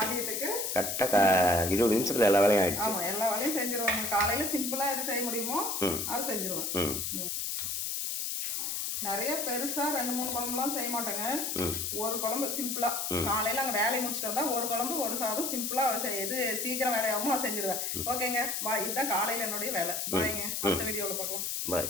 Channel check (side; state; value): left; noise; hiss, 2 dB below the sound